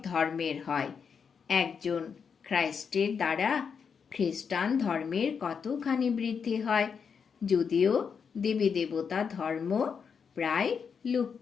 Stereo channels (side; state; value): right; quieter; 6.4 dB